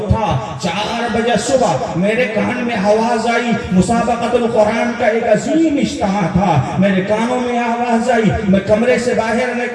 4 بجے صبح میرے کان میں آواز آئی، مسابقۃ القرآن کا ایک عظیم اجتماع تھا، میرے کانوں میں آواز آئی، میں کمرے سے باہر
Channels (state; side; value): identical; both; correlation 1.00